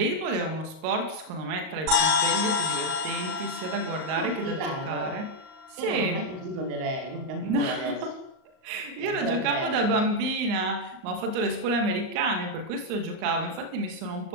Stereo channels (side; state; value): left; late; 38 ms